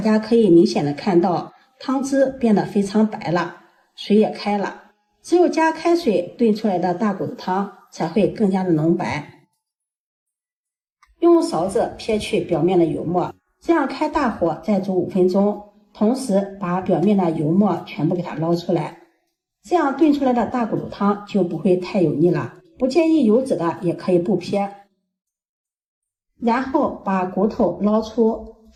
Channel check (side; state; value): both; identical; correlation 1.00